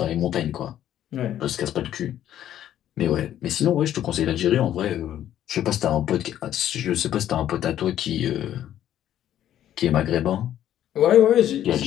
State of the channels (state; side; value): quieter; right; 11.4 dB